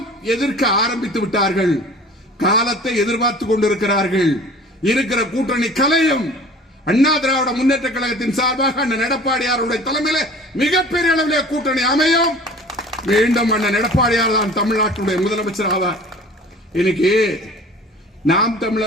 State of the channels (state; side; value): normal; both; correlation 0.45